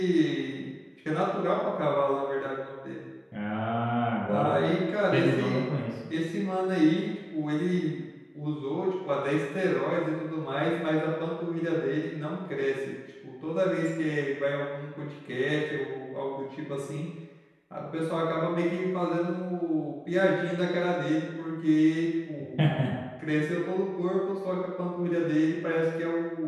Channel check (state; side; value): identical; both; correlation 1.00